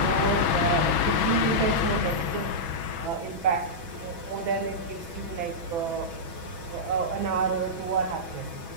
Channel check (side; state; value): left; late; 6.2 ms